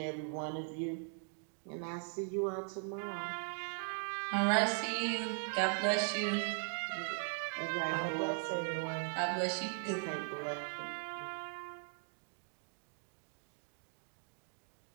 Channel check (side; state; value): left; silent; 52 dB below the other